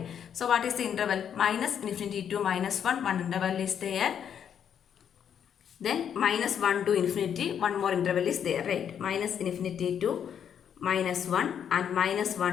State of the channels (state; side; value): quieter; right; 8.5 dB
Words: So what is the interval? Minus infinity to minus 1. One interval is there. Then minus 1 to infinity. One more interval is there, right? Minus infinity to minus 1 and minus